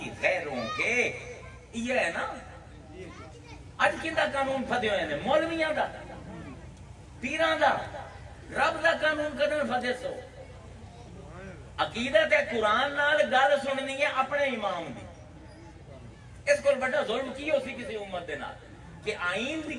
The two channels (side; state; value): both; identical; correlation 1.00